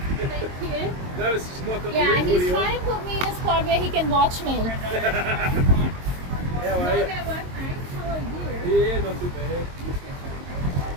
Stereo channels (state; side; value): late; left; 22 ms